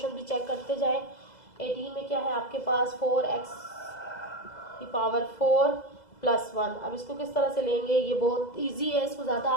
भी चेक करते जाएं। 18 में क्या है आपके पास, 4x की पावर 4 प्लस 1। अब इसको किस तरह से लेंगे, ये बहुत इजी है, इसको ज़्यादा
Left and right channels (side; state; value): right; late; 2.0 ms